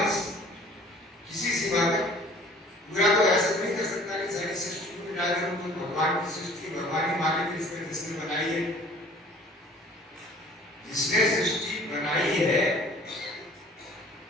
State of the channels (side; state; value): both; normal; correlation 0.51